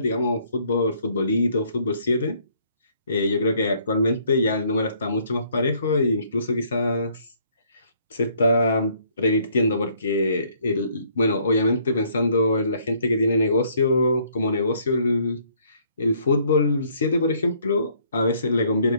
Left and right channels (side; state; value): both; inverted; correlation -0.65